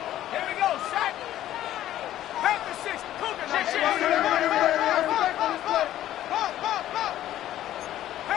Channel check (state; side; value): quieter; right; 12.9 dB